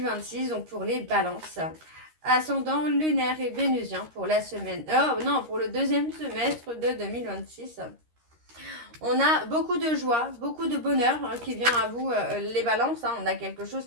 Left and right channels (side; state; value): left; late; 13 ms